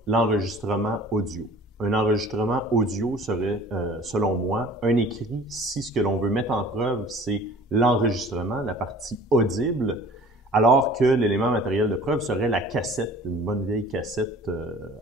l'enregistrement audio. Un enregistrement audio serait, selon moi, un écrit si ce que l'on veut mettre en preuve, c'est l'enregistrement, la partie audible, alors que l'élément matériel de preuve serait la cassette, une bonne vieille cassette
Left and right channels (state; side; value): normal; both; correlation 0.47